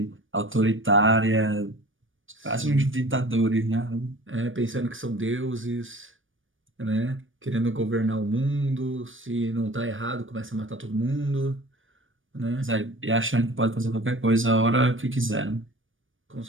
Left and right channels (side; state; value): left; late; 0.57 ms